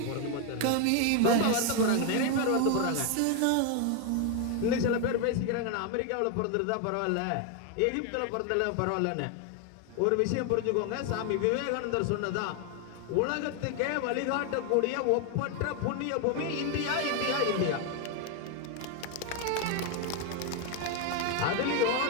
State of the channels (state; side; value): different; both; correlation 0.01